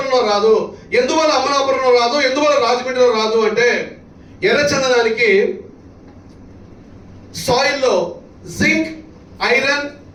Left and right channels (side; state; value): both; identical; correlation 1.00